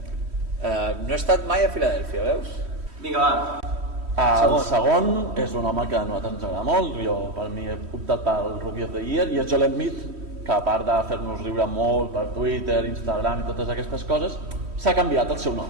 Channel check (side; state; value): left; late; 3.1 ms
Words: No he estat mai a Filadèlfia, veus? Vinga, va. El segon és un home que a nosaltres ens agrada molt, jo per mi he optat pel Rookie of the Year, i és Joel Embiid, que a part de fer-nos riure molt per Twitter, Instagram i totes aquestes coses, s'ha canviat el seu nom.